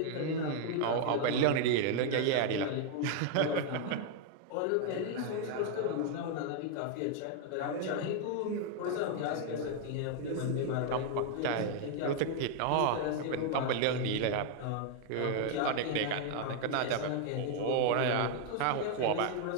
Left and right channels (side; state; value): both; different; correlation 0.00